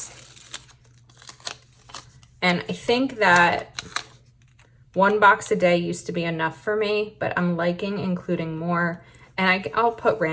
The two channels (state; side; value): identical; both; correlation 1.00